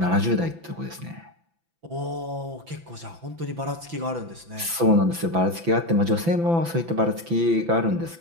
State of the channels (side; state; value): left; late; 5.9 ms